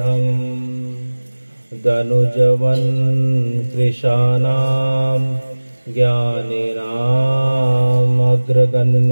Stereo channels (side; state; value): both; inverted; correlation -1.00